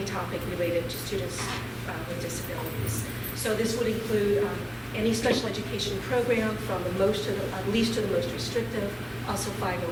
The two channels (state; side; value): identical; both; correlation 1.00